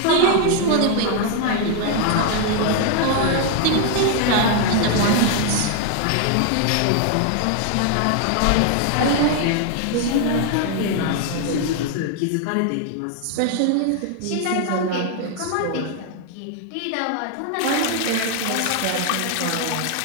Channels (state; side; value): different; both; correlation 0.00